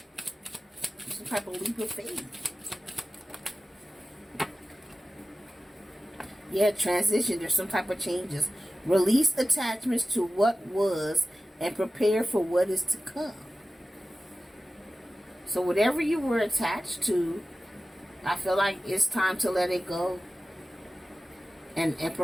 Some type of leap of faith. Yeah, transition. There's some type of changes. Release attachments to what was and prepare for what is to come. So whatever you were attached to, I feel like it's time to let it go and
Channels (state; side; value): normal; both; correlation 0.95